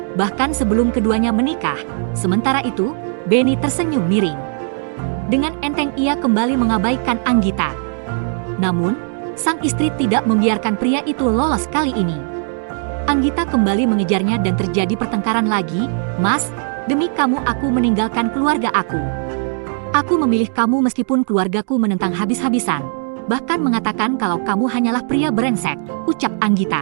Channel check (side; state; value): left; silent; 56 dB below the other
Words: Bahkan sebelum keduanya menikah, sementara itu, Benny tersenyum miring. Dengan enteng ia kembali mengabaikan Anggita. Namun, sang istri tidak membiarkan pria itu lolos kali ini. Anggita kembali mengejarnya dan terjadi pertengkaran lagi. Mas, Demi kamu aku meninggalkan keluarga aku. Aku memilih kamu meskipun keluargaku menentang habis-habisan. Bahkan mengatakan kalau kamu hanyalah pria brengsek, ucap